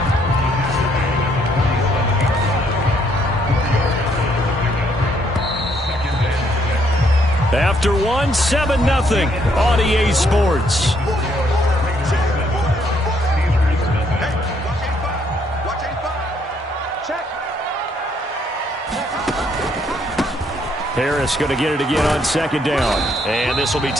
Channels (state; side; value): normal; both; correlation 0.70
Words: After 1, 7-0 on EA Sports. Harris going to get it again on 2nd down. And this will be